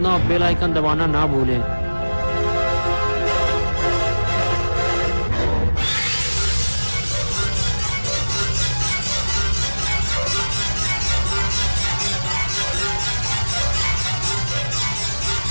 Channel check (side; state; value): both; inverted; correlation -1.00